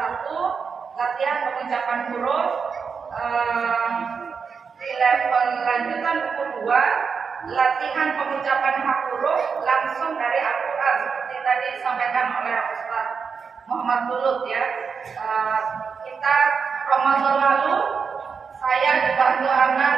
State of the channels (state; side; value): quieter; left; 5.8 dB